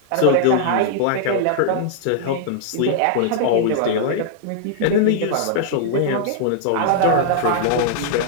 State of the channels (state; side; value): different; both; correlation -0.01